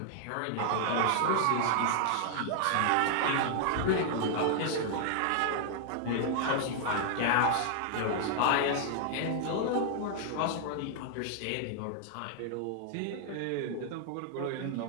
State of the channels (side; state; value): both; different; correlation -0.01